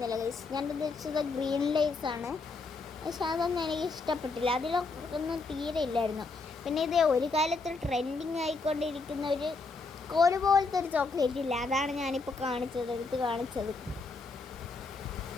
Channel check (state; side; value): quieter; right; 3.9 dB